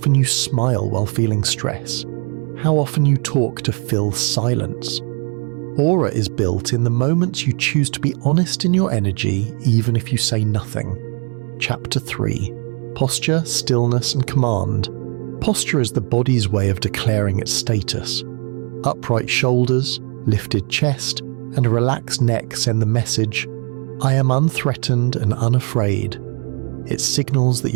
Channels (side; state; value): left; quieter; 36.5 dB